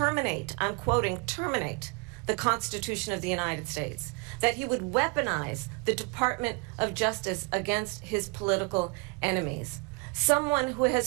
I'm quoting, terminate the Constitution of the United States, that he would weaponize the Department of Justice against his political enemies. Someone who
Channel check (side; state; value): left; quieter; 30.6 dB